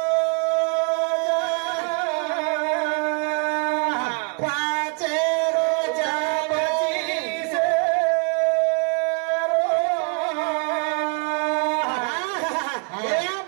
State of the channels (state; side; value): quieter; left; 36.4 dB